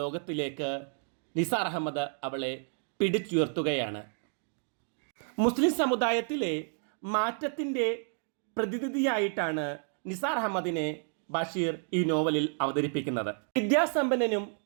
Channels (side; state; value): left; silent; 56 dB below the other